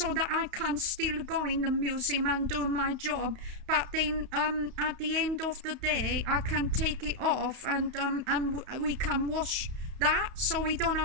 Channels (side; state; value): left; late; 31 ms